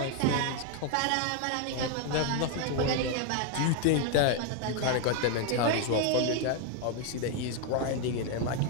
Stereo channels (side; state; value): both; different; correlation 0.01